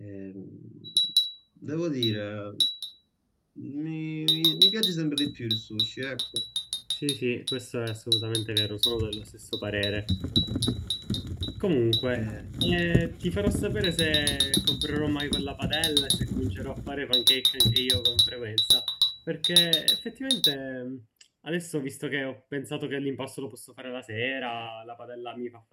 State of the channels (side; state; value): both; identical; correlation 1.00